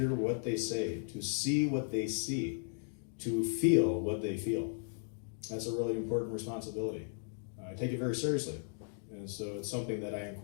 what they say, to see what they see, to feel what they feel. That's a really important responsibility. I take it very seriously. And so it's something that I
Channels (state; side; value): silent; right; digital silence